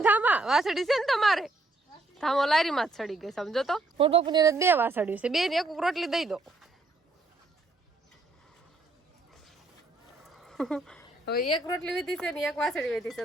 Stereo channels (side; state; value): left; quieter; 3.1 dB